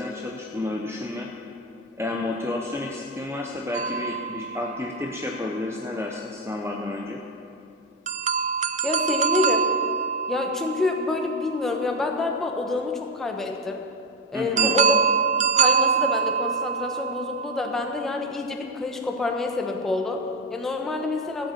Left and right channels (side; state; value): both; normal; correlation 0.05